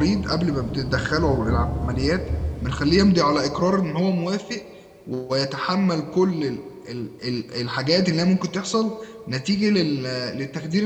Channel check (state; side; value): identical; both; correlation 1.00